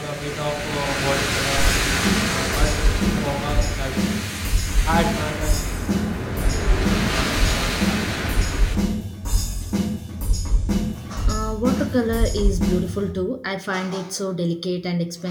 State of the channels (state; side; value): identical; both; correlation 1.00